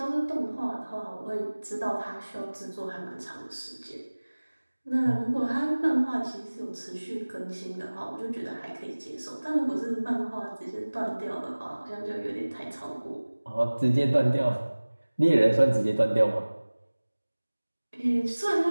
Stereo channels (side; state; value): both; inverted; correlation -1.00